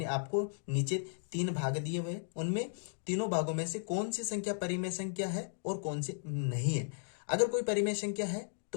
आपको नीचे 3 भाग दिए हुए, उनमें तीनों भागों में से कौन सी संख्या परिमेय संख्या है और कौन सी नहीं है। अगर कोई परिमेय संख्या है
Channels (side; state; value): right; silent; digital silence